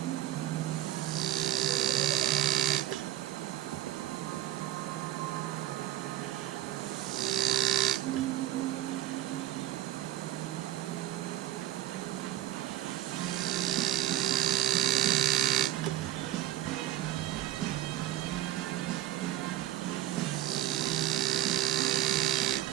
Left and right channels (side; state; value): left; quieter; 13.4 dB